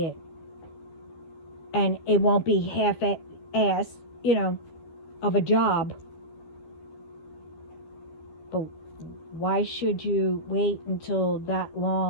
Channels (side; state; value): right; late; 12 ms